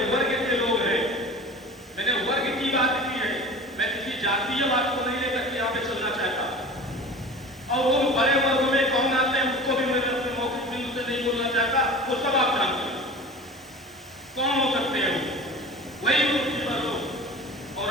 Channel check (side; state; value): both; normal; correlation 0.37